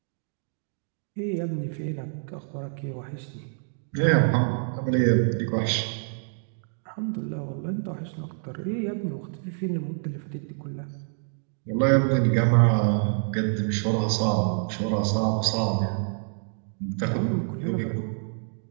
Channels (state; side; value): silent; left; 60 dB below the other